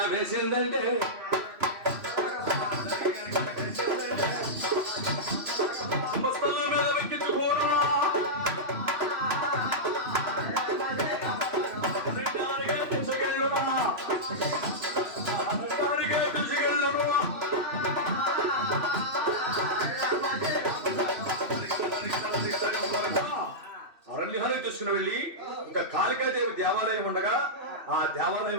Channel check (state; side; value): late; left; 3.0 ms